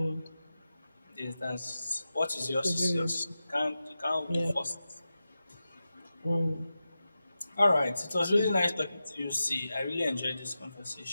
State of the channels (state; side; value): inverted; both; correlation -0.92